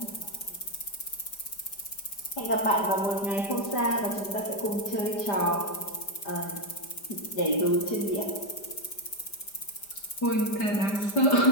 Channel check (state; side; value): late; right; 5.0 ms